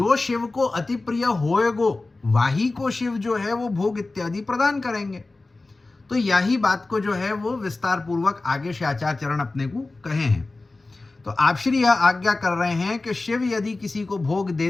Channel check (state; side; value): quieter; right; 3.3 dB